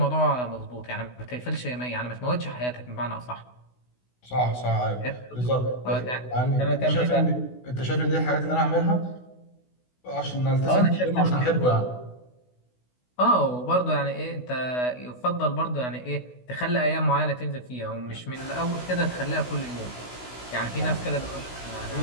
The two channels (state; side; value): late; right; 16 ms